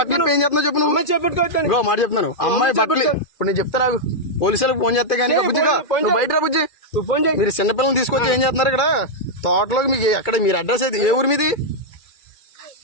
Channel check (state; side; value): late; right; 2.1 ms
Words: ఏం చేస్తున్నావు చెప్పు నువ్వు అమ్మాయి చేపట్టుకోవచ్చు ఇంకో మాట చెప్తున్నాను అమ్మాయి బట్టలు ఇప్పుడు నేను చెప్తా నాకు పోలీసులకు ఫోన్ చేస్తే కానీ బుజ్జిగా నువ్వు బయట రా బుజ్జి ఫోన్ చేయి మీరు చిన్నపిల్లలు తీసుకొచ్చి ఏం చేస్తున్నారు ఇక్కడ తోటలోకి మీకు ఎక్కడ మీరు అడ్రస్ అయితే ఏ ఊరు మీది